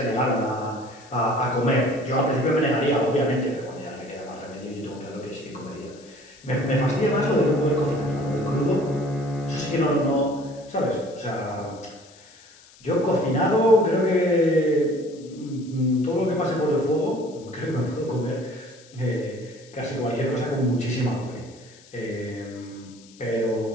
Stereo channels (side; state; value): left; noise; hiss, 24 dB below the sound